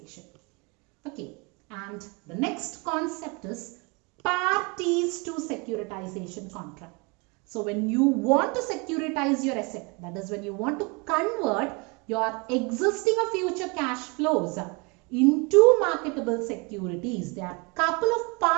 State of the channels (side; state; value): left; quieter; 29.9 dB